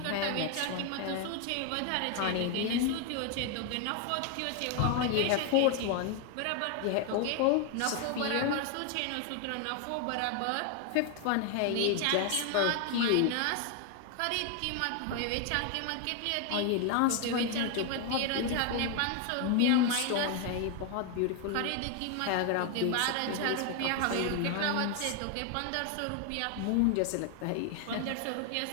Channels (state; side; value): different; both; correlation 0.01